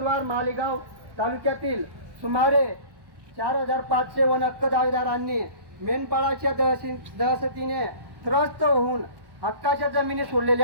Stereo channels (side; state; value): left; late; 1.1 ms